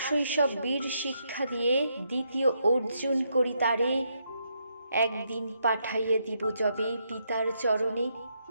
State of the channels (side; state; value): both; inverted; correlation -0.78